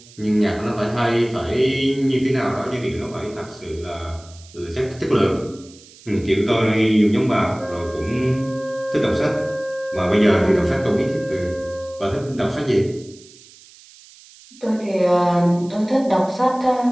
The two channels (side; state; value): right; noise; hiss, 23 dB below the sound